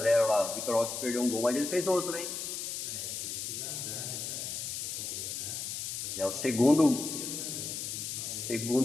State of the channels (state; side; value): noise; left; hiss, 4 dB below the sound